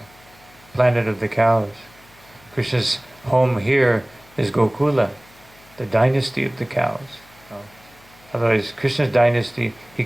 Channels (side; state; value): left; noise; hum, 27 dB below the sound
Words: planet of the cows. Krishna's home here is Gokula, the dynasty of the cows. Otherwise, Krishna's dynasty, he